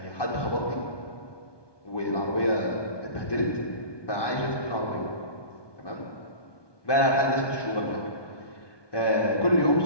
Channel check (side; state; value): right; late; 1.2 ms